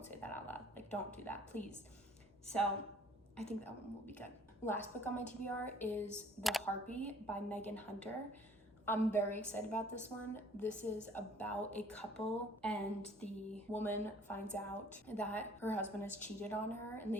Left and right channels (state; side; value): normal; both; correlation 0.55